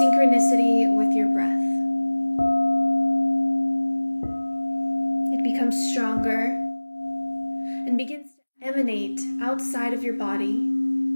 with your breath. It becomes stronger and begins to emanate outside of your body,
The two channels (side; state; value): both; inverted; correlation -1.00